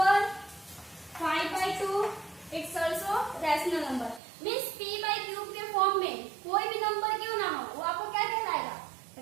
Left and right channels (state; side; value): drops out; left; at 4.2 s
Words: 5 by 2 it's also rational number. Means p by cube के form में कोई भी नंबर क्यों ना हो वो आपको क्या कहलाएगा?